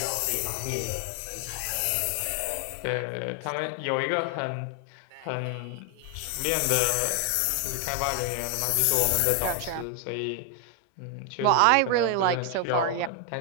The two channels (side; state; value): both; different; correlation 0.01